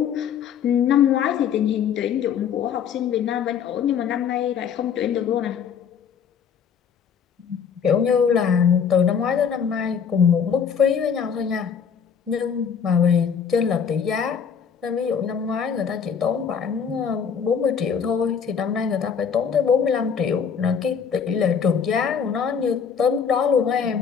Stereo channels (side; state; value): right; quieter; 7.2 dB